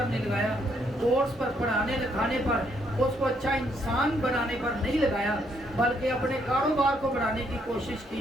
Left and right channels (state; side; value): normal; both; correlation 0.72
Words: नहीं लगाया, कोर्स पर, पढ़ाने लिखाने पर, उसको अच्छा इंसान बनाने पर नहीं लगाया, बल्कि अपने कारोबार को बढ़ाने की कोशिश